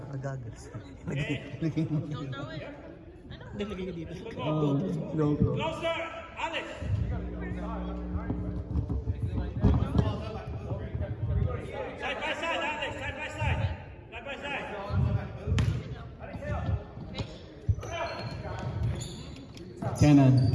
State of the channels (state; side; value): identical; both; correlation 1.00